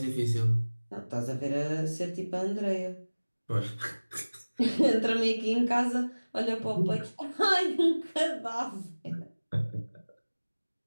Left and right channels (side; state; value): both; inverted; correlation -1.00